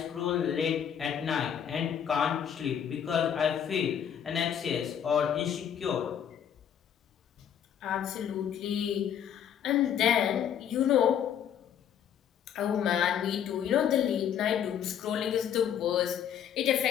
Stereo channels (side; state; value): right; quieter; 9.0 dB